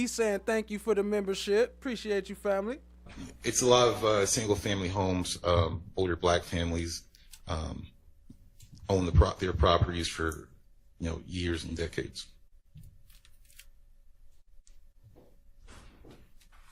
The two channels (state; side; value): identical; both; correlation 1.00